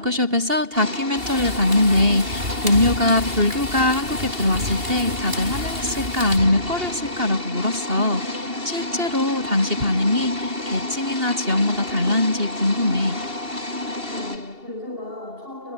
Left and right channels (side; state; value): left; late; 2.8 ms